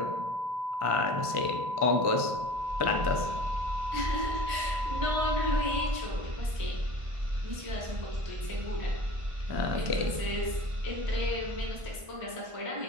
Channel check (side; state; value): left; late; 1.5 ms